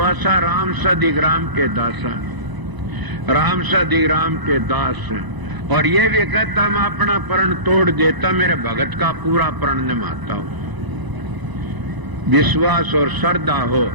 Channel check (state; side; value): late; left; 1.0 ms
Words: राम से अधिक राम के दासा, राम से अधिक राम के दास। और ये भी कहता मैं अपना प्रण तोड़ देता, मेरे भगत का पूरा प्रण निभाता हूं। विश्वास और श्रद्धा हो